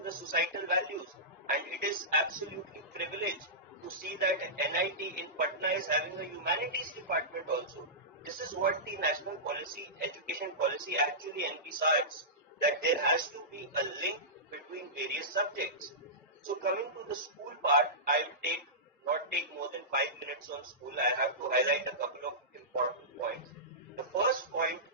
the societal values. And it is absolutely privileged to see that NIT in Patna is having a humanities department also. This is what the national policy, education policy actually envisages, that there has to be a link between various subjects. So coming to the school part, I will not take more than 5 minutes on school. I have to highlight a couple of important points. The first point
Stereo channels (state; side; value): normal; both; correlation -0.17